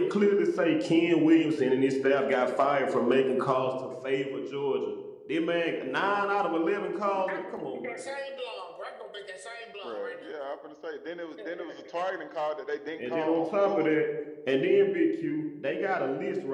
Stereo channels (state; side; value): identical; both; correlation 1.00